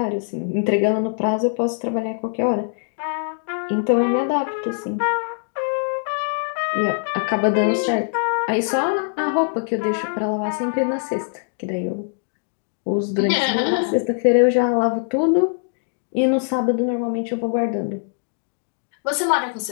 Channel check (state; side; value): silent; right; 64 dB below the other